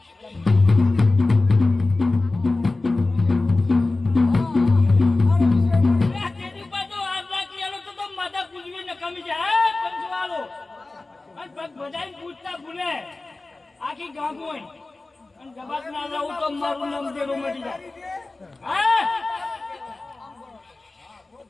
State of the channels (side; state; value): right; quieter; 3.2 dB